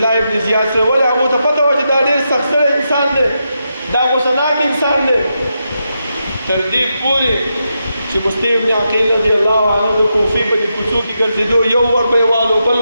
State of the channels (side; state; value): both; inverted; correlation -0.85